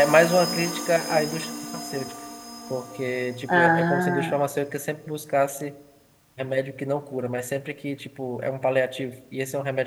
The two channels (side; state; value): both; identical; correlation 1.00